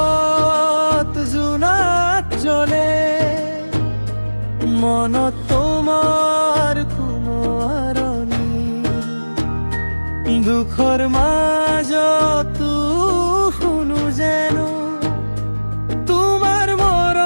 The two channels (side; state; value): both; inverted; correlation -1.00